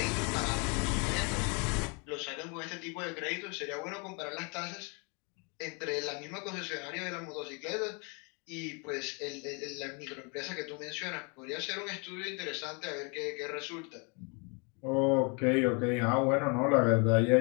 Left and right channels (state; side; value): quieter; right; 33.6 dB